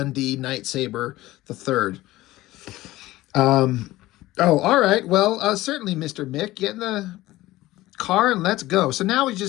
Night Saber the third. Oh, all right. Well, certainly, Mr. Mick. Get in the car and let's go. So now we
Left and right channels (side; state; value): right; quieter; 17.3 dB